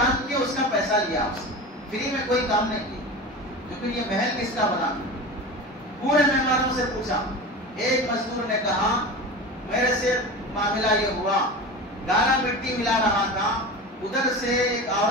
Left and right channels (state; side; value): normal; both; correlation 0.30